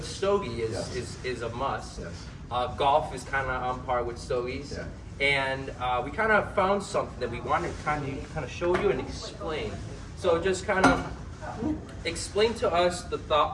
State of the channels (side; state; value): both; identical; correlation 1.00